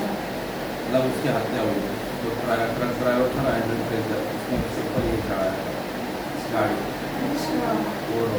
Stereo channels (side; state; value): both; identical; correlation 1.00